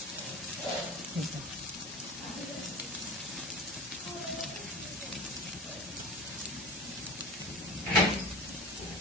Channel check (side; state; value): both; normal; correlation 0.33